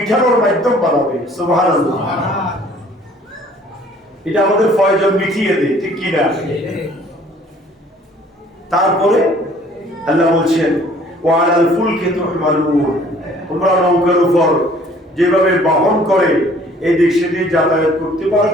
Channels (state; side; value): normal; both; correlation 0.56